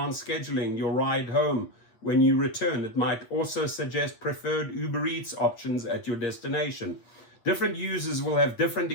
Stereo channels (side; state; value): right; late; 8.6 ms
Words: scheduling your ride home when you return. It might also suggest preferred Uber Eats options at your destination. Different users will have different